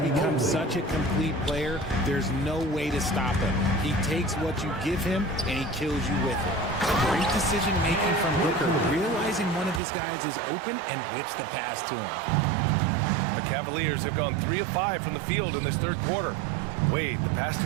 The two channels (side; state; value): left; drops out; at 9.8 s